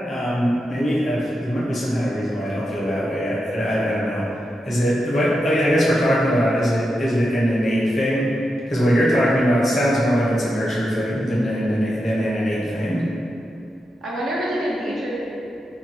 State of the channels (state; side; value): normal; both; correlation 0.87